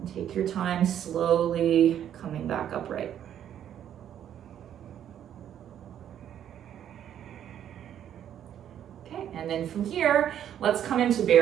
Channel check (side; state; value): left; quieter; 10.1 dB